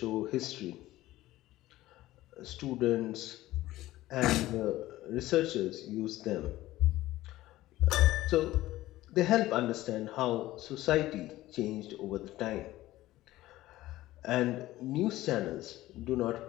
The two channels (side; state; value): right; quieter; 16.2 dB